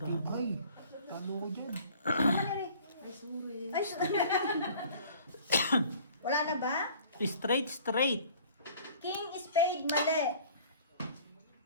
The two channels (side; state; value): both; inverted; correlation -0.50